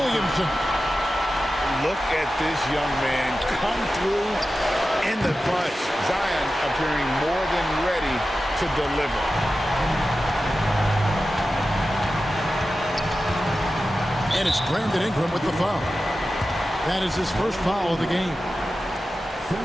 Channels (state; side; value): normal; both; correlation 0.93